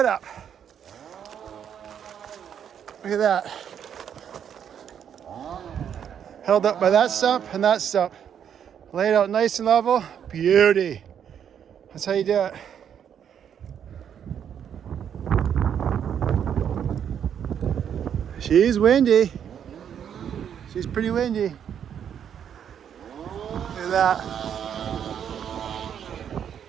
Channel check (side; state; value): left; quieter; 8.7 dB